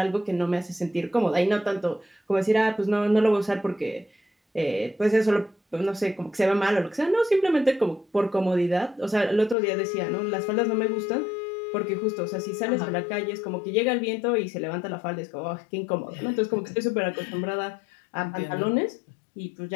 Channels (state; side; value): drops out; right; at 9.6 s